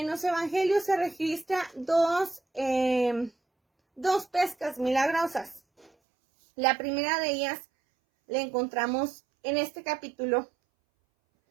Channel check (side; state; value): left; drops out; at 5.9 s